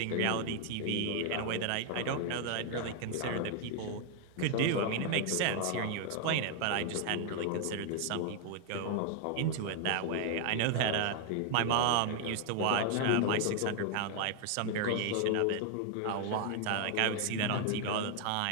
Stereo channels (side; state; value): both; different; correlation 0.00